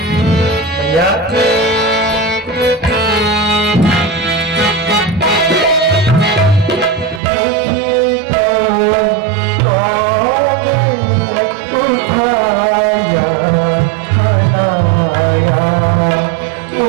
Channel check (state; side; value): drops out; left; at 7.2 s